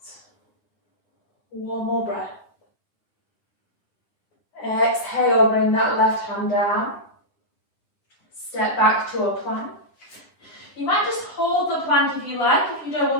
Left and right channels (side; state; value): right; late; 10 ms